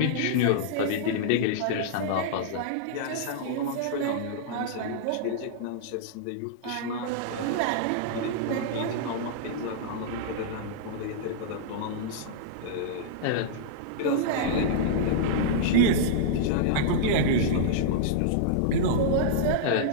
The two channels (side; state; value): both; different; correlation -0.02